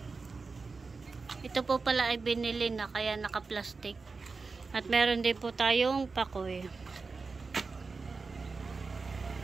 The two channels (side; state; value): left; quieter; 4.3 dB